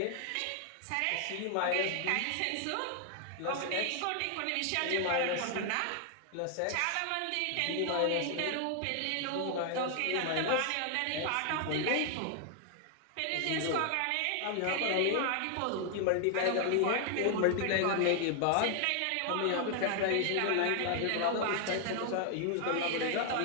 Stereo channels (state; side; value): different; both; correlation 0.00